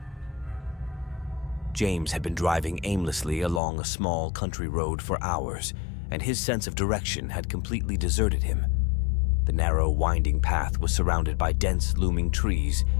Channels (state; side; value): drops out; right; at 3.6 s